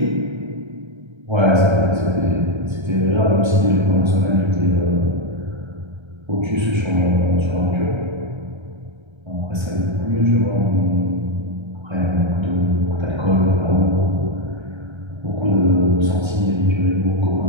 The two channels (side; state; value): left; late; 1.3 ms